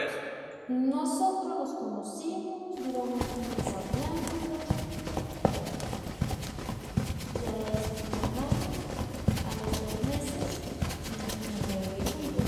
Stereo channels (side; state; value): both; identical; correlation 1.00